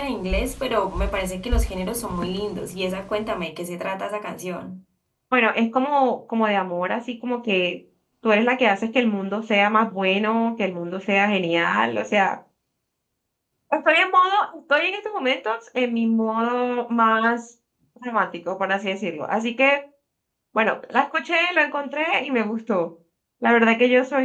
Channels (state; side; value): identical; both; correlation 1.00